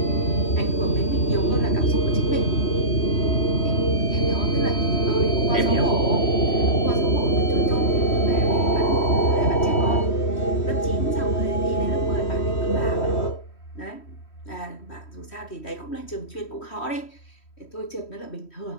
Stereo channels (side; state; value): right; late; 3.1 ms